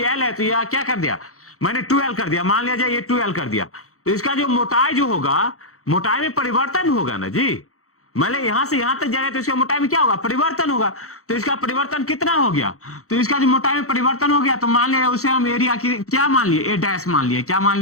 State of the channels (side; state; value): right; late; 0.64 ms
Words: एल है तो यह क्या कर दिया, मैंने 12 कर दिया, मान लिया जाए ये 12 कर दिया, तो इसका जो मोटाई जो होगा, मोटाई में परिवर्तन होगा ना जी। मतलब यहां से यहां तक जाएगा तो इसका मोटाई में क्या होगा, परिवर्तन होगा। तो इसका परिवर्तन कितना हो गया, तो इसका जो मोटाई में परिवर्तन हो गया, तो मान लिया उसे हम एरिया की क्या मान लिए, ए डैश मान लिए। क्या मान